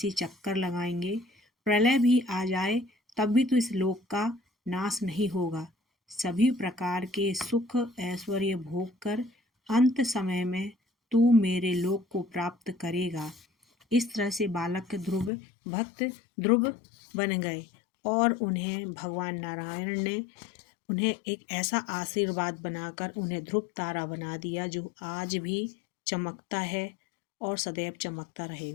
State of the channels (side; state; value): right; drops out; at 15.3 s